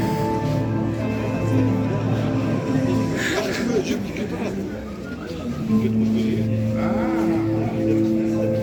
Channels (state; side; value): identical; both; correlation 1.00